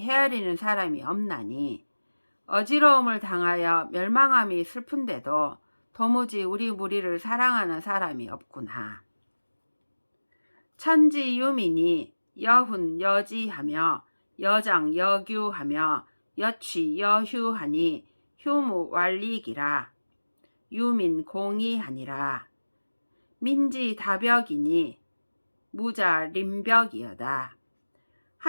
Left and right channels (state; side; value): inverted; both; correlation -1.00